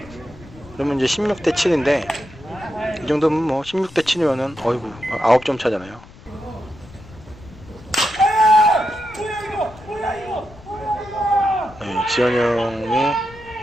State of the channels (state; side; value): noise; left; rumble, 20 dB below the sound